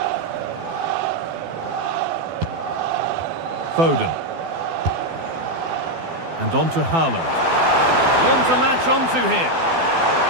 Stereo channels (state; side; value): late; left; 12 ms